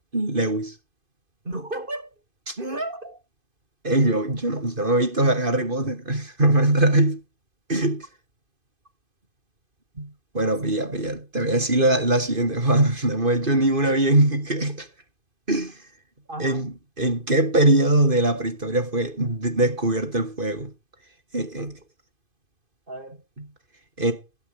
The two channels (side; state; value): left; late; 2.5 ms